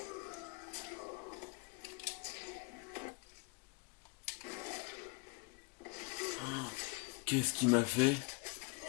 Qu'est-ce qu'il m'a fait?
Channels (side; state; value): right; quieter; 28.1 dB